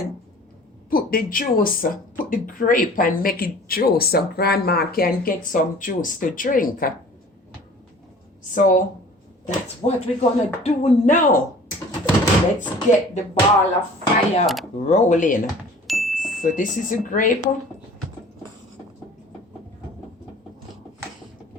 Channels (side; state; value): both; normal; correlation 0.47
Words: put the juice, put the grape and make it juice so grandma can get some juice to drink. So that's what we're gonna do now. Let's get the ball of fire rolling. So this is a grape. I'm